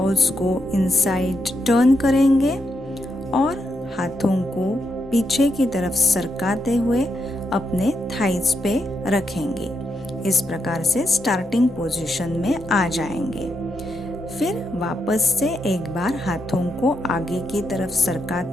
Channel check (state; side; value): normal; both; correlation 0.83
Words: को इनसाइड टर्न करेंगे और हाथों को पीछे की तरफ सरकाते हुए अपने थाइज पे रखेंगे। इस प्रकार से स्टार्टिंग पोजीशन में आ जाएंगे। फिर वापस से एक बार हाथों को आगे की तरफ